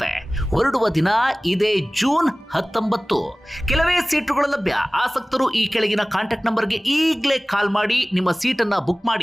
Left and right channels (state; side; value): normal; both; correlation 0.98